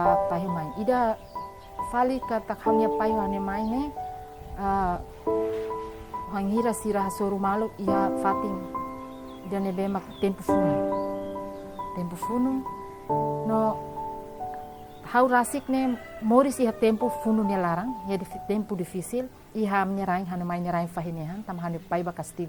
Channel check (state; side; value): identical; both; correlation 1.00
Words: pahimai ida fali kata khamnya pahimane mai ne hangira sirah soru malu ia fatin jane be mak tempo funu no hau rasik ne moris iha tempo funu ne larang ya tempo difícil. Iha menyerahin hana mai nyerahin fahinehan tam hana pai ba